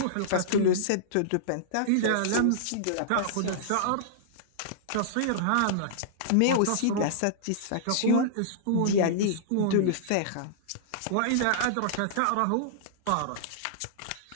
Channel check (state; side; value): different; both; correlation -0.02